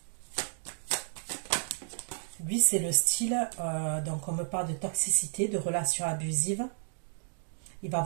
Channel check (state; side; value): silent; left; digital silence